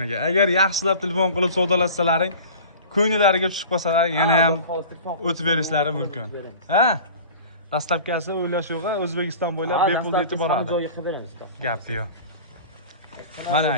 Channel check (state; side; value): inverted; both; correlation -0.40